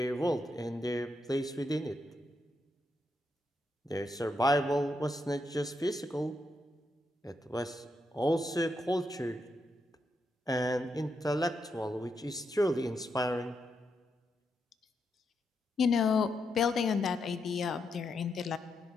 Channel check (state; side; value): normal; both; correlation 0.82